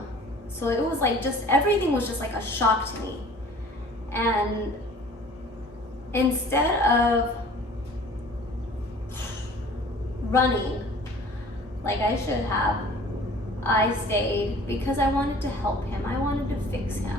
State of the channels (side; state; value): both; normal; correlation 0.48